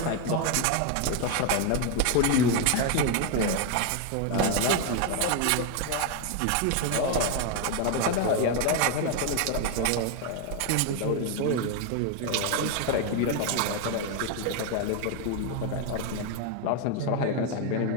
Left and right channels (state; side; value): different; both; correlation 0.01